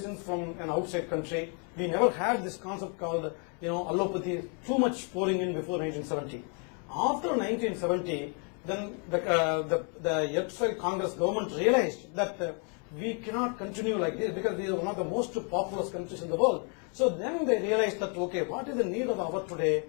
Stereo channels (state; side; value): quieter; right; 38.6 dB